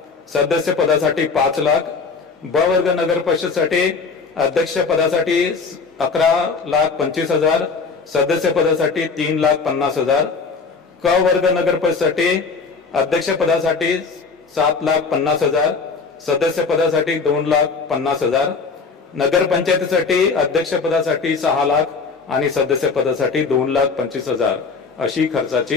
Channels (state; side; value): quieter; right; 4.8 dB